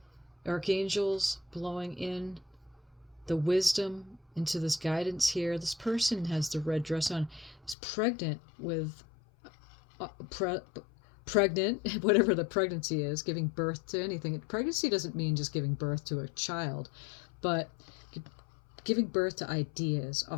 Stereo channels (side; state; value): right; drops out; at 7.8 s